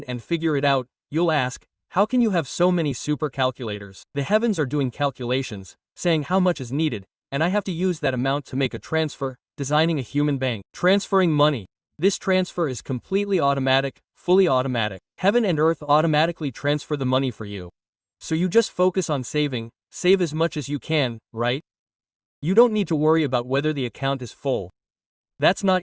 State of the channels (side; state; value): both; identical; correlation 1.00